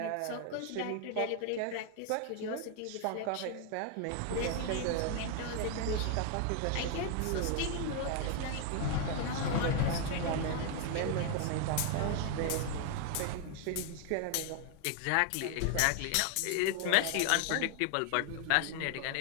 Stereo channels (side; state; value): both; different; correlation 0.00